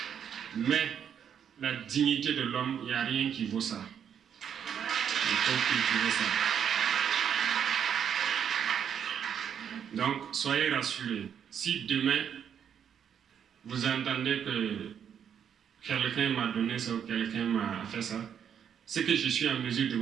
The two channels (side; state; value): left; quieter; 8.3 dB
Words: mais la dignité de l'homme, il n'y a rien qui vaut ça. Il faut cultiver ça. Donc, soyez rassurés. Si demain, vous entendez que quelqu'un m'a donné ça ou quelqu'un m'a fait ça, c'est que je suis en mesure de